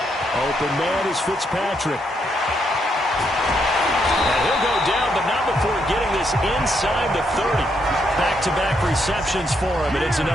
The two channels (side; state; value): both; normal; correlation 0.77